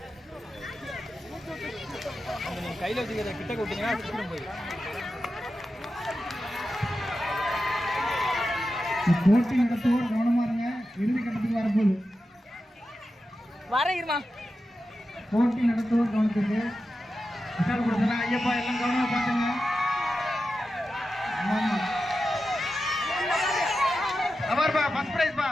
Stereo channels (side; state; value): both; normal; correlation 0.91